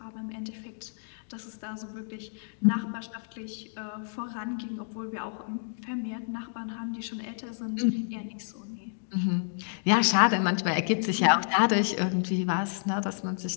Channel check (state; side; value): silent; right; digital silence